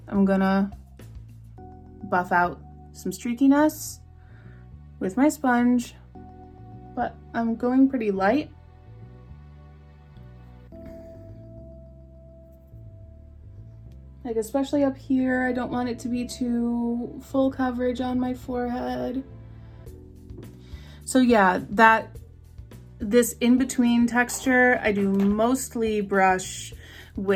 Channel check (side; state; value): both; identical; correlation 1.00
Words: I'm gonna buff out some streakiness with my sponge, but I'm going pretty light. Like especially up here, I don't want it to be too full coverage on my forehead. So yeah, this in-between texture, I do mostly brush